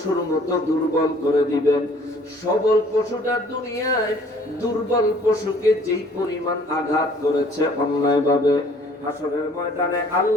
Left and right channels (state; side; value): normal; both; correlation 0.56